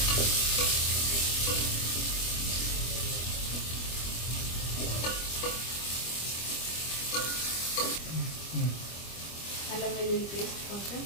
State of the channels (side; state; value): right; late; 25 ms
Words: అల్లం వెల్లుల్లి పేస్ట్ కొంచెం,